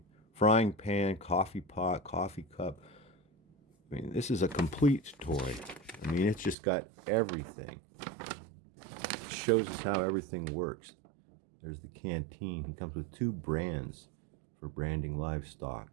Frying pan, coffee pot, coffee cup. I mean, this is a complete toy. I mean, it's just got everything. It shows us how everything works. There's the canteen. He comes with 2 brands for branding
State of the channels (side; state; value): left; drops out; at 6.6 s